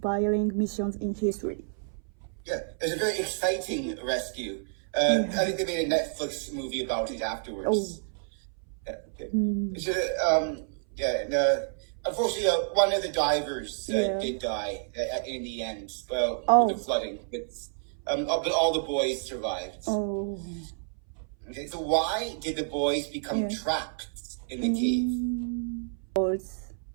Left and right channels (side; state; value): left; silent; 58 dB below the other